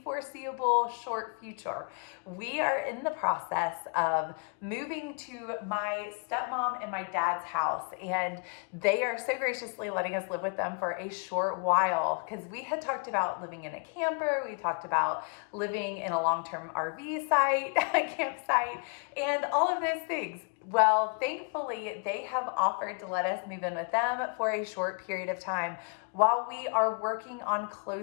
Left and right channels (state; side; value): quieter; right; 38.3 dB